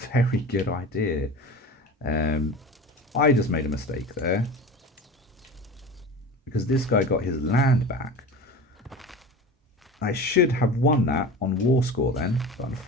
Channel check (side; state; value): both; normal; correlation 0.33